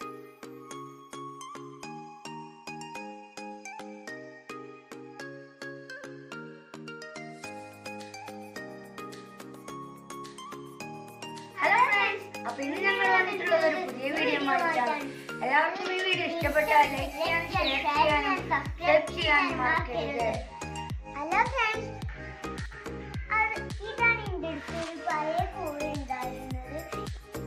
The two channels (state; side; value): identical; both; correlation 1.00